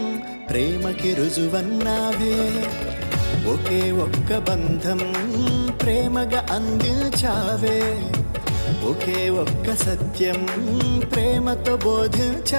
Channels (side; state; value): both; inverted; correlation -1.00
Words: ప్రేమకి రుజువన్నావే ఒకే ఒక్క బంధం ప్రేమగా అందించావే ఒకే ఒక్క సత్యం ప్రేమతో